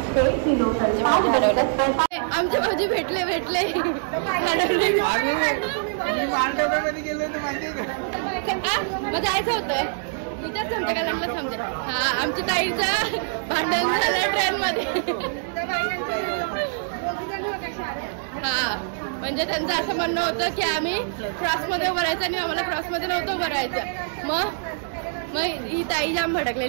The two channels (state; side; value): silent; left; digital silence